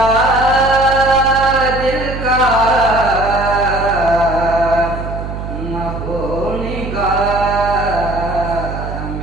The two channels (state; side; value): noise; right; hum, 7 dB below the sound